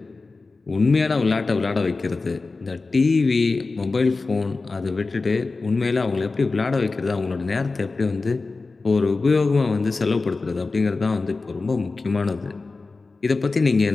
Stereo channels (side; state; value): right; quieter; 3.8 dB